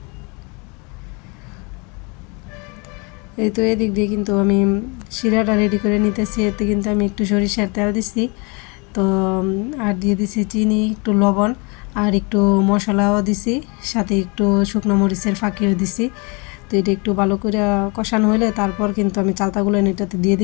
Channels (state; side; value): quieter; right; 30.5 dB